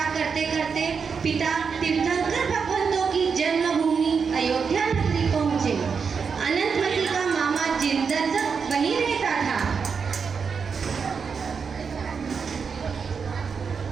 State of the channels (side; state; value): left; quieter; 5.8 dB